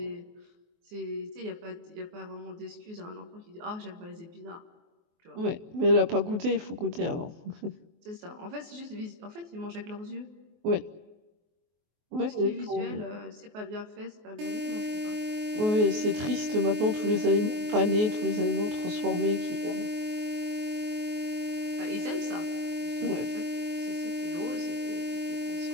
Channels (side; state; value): left; late; 24 ms